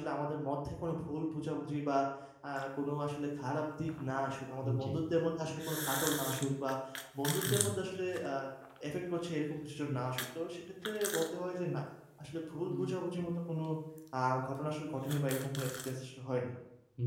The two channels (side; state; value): both; identical; correlation 1.00